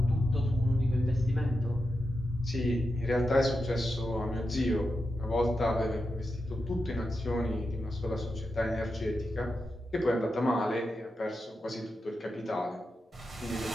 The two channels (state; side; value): normal; both; correlation 0.88